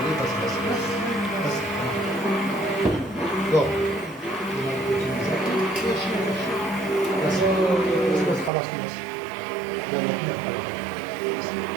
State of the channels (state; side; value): drops out; left; at 8.5 s